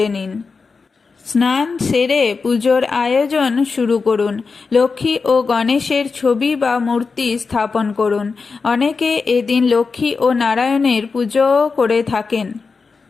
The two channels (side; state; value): right; quieter; 4.7 dB